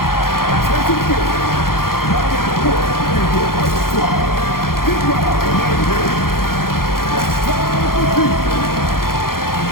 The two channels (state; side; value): late; right; 0.92 ms